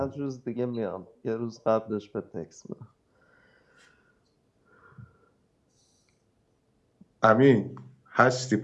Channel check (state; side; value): identical; both; correlation 1.00